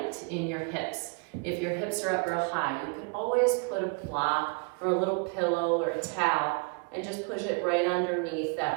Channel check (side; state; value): left; quieter; 34.2 dB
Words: in your hips, if your hips are up real high, you can always put a block or a little pillow or a towel and just push it right underneath